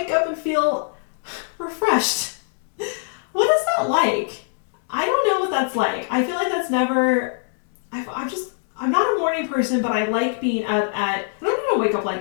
up and feel refreshed. What is that like? I don't know what that's like. I feel like that's never, I'm not a morning person, but I like being up at, I don't even wake up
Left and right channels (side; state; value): right; silent; 64 dB below the other